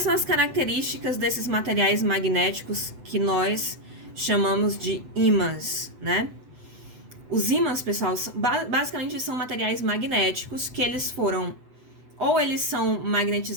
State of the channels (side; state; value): left; late; 8.0 ms